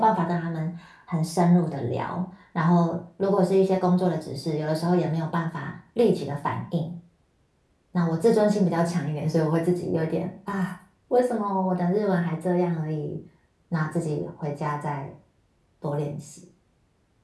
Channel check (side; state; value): both; identical; correlation 1.00